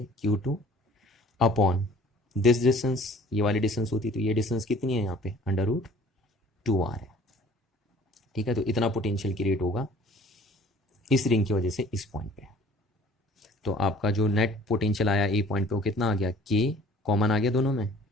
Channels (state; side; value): normal; both; correlation 0.51